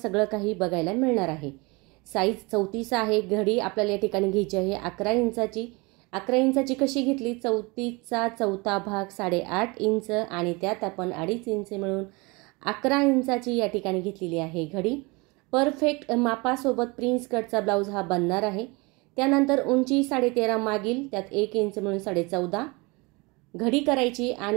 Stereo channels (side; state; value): left; quieter; 26.5 dB